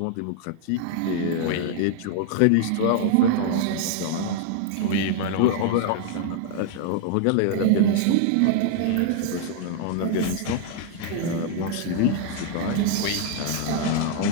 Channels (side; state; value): both; different; correlation 0.00